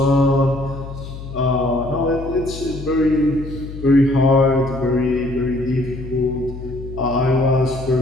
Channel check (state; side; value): noise; left; hum, 11 dB below the sound